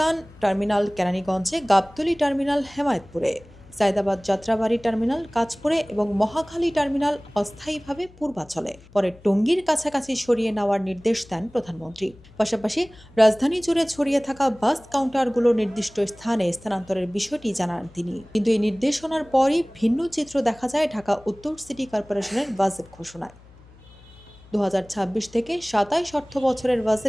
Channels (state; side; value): noise; left; hum, 24 dB below the sound